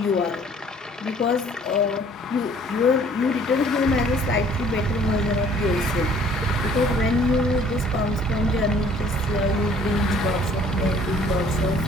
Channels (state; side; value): normal; both; correlation 0.56